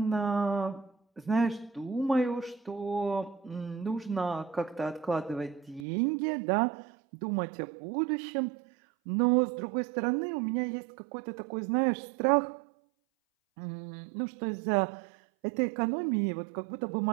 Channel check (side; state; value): left; drops out; at 5.8 s